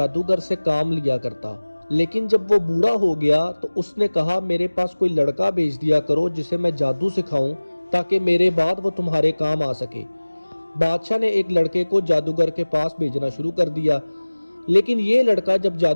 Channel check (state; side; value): inverted; both; correlation -1.00